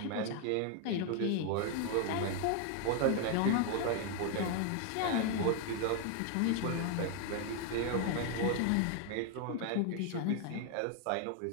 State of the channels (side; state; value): both; different; correlation 0.00